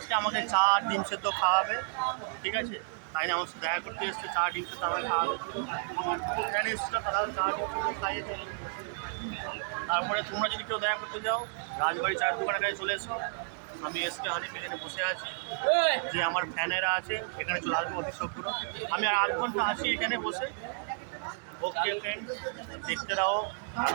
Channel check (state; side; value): silent; left; digital silence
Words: আমাকে চা ডিম সেদ্ধ খাওয়াবে, ঠিক আছে? তাই না আমার সাথে দেখা করতে এসছে, চা ডিম সেদ্ধ আমাকে খাওয়াবে। আমার ফ্যান এসছিল, তারা চা ডিম সেদ্ধ খাইয়েছে। তারপরে তোমরা যদি কেউ দেখা করতে যাও, রাজবাড়ি চায়ের দোকানের কাছে চলে এসো। আমি এসকে হানিফ এখানে বসে আছি, যে আমার ফ্যানেরা আছে এখানে চলে আসবো অতি শীঘ্র। আমি আর 8 ঘন্টা আছি এখানে বসে। ওকে ফ্রেন্ড, দেখতে রাও